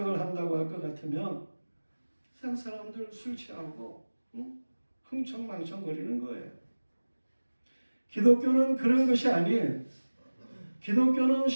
한다고 할 것 같으면 세상 사람들 술 취하고 흥청망청 거리는 거예요. 기독교는 그런 것이 아니에요. 기독교는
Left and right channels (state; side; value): inverted; both; correlation -1.00